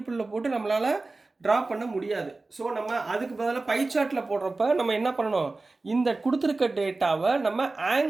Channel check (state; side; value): quieter; left; 3.4 dB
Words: போட்டு நம்மளால் ட்ரா பண்ண முடியாது. ஸோ நம்ம அதுக்கு பதிலாக பை சார்ட்டில் போடுறப்ப நம்ம என்ன பண்ணணும், இந்த கொடுத்துருக்க டேட்டாவை நம்ம